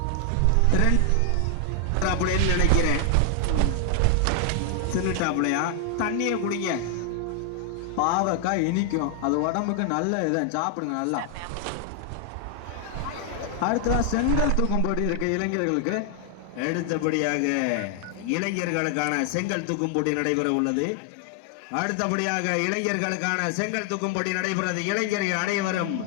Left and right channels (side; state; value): both; different; correlation 0.00